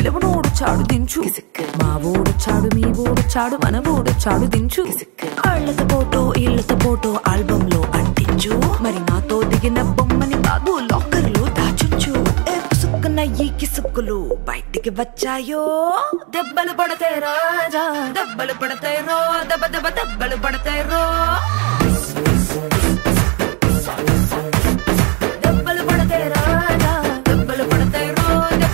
దించు మా ఓడొచ్చాడు మీ ఓడొచ్చాడు మన ఓడొచ్చాడు దించు ఇళ్ళతో ఫోటో ఆల్బమ్ లో అంటించు మరి నాతో దిగిన బొమ్మని బాబు లాకర్ లో దాచుంచు సుక్కున ఈ కిసుక్కులు బయటికి వచ్చాయో దెబ్బలు పడతాయి రాజా దెబ్బలు పడతాయి రో దెబ్బ దెబ్బ దెబ్బలు పడతాయి రో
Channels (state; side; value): quieter; left; 32.2 dB